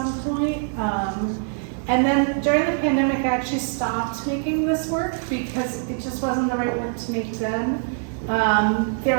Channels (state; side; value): silent; left; 62 dB below the other